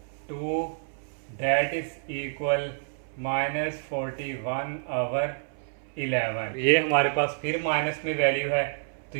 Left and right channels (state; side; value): silent; left; 59 dB below the other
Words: डेट इज इक्वल -41/11। ये हमारे पास फिर माइनस में वैल्यू है तो